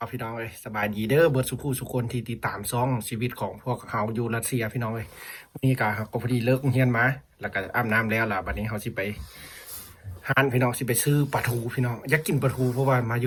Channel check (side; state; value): both; identical; correlation 1.00